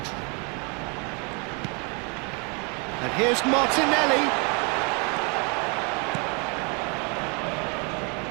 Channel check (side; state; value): left; quieter; 33.4 dB